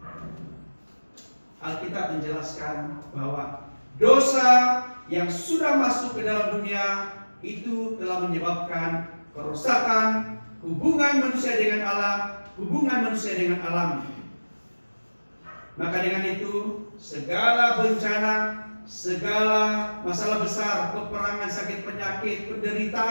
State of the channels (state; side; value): inverted; both; correlation -1.00